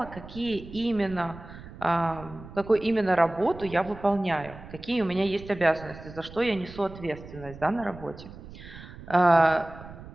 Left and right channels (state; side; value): noise; right; rumble, 16 dB below the sound